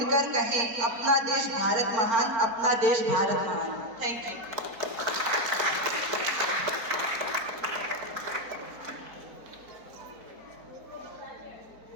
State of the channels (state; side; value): late; left; 4.4 ms